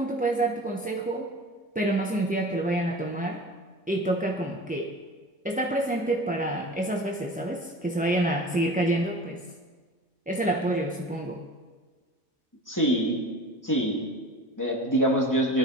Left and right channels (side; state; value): both; normal; correlation 0.39